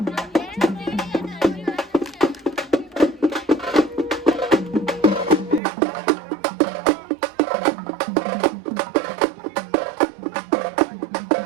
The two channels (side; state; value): left; drops out; at 5.6 s